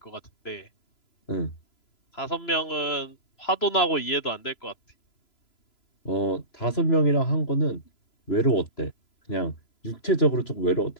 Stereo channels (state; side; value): late; right; 3.0 ms